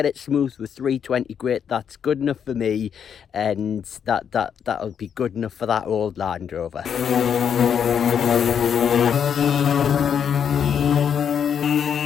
it smooth with 320 grit, that's good enough for me, and that'll be good enough for that old Land Rover.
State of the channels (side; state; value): right; quieter; 7.9 dB